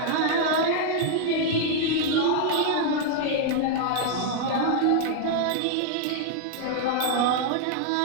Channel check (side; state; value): both; different; correlation 0.00